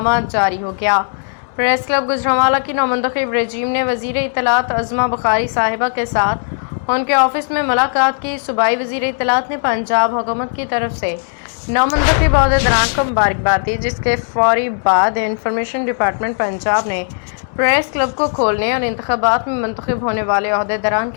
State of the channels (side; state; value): right; silent; 66 dB below the other